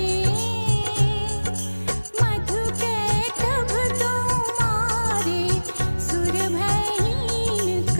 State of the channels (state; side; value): inverted; both; correlation -1.00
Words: मधु कैटभ दो मारे सुर भयहीन